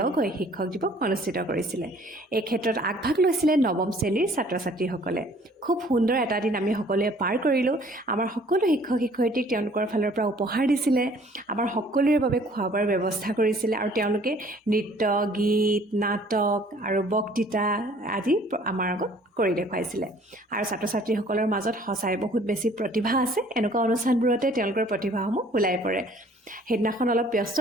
হৈ শিক্ষক দিৱস অনুষ্ঠিত কৰিছিলে। এই ক্ষেত্ৰত আগভাগ লৈছিলে নৱম শ্ৰেণীৰ ছাত্ৰ ছাত্ৰীসকলে। খুব সুন্দৰ এটা দিন আমি সকলোৱে পাৰ কৰিলোঁ। আমাৰ সকলো শিক্ষক শিক্ষয়িত্ৰীক তেওঁলোকৰ ফালৰ পৰা উপহাৰ দিছিলে, আমাৰ সকলোৰে বাবে খোৱা বোৱাৰ ব্যৱস্থা কৰিছিলে আৰু তেওঁলোকে নৃত্য, গীত, নাটক আৰু বক্তৃতা আদি আমাৰ আগত কৰি দেখুৱাইছিলে। আৰু ছাত্ৰ ছাত্ৰীসকলৰ মাজত সঁচাই বহুত বেছি প্ৰতিভা আছে। এনেকুৱা অনুষ্ঠানবোৰতে তেওঁলোকৰ প্ৰতিভাসমূহ ওলাই পৰে। সেইদিনাখন অলপ ব্যস্ত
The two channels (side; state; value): both; normal; correlation 0.56